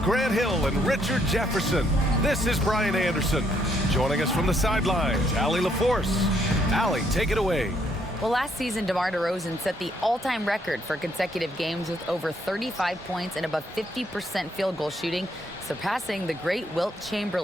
Grant Hill and Richard Jefferson. This is Brian Anderson. Joining us from the sidelines, Allie LaForce. Allie, take it away. Well, last season, DeMar DeRozan set the all-time record for consecutive games with over 35 points and above 50% field goal shooting, surpassing the great Wilt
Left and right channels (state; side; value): normal; both; correlation 0.71